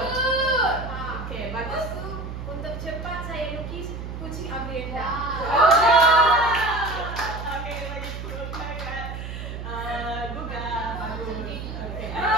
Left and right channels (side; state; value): right; noise; hum, 7 dB below the sound